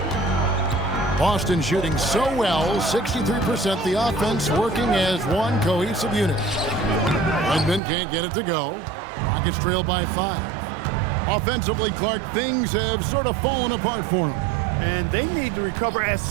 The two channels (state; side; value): drops out; left; at 7.8 s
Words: Boston shooting so well, 63%. The offense working as one cohesive unit. Redmond can't get it to go. Rockets trail by 5. Offensively, Clark, things have sort of fallen apart for them. And they need to recover as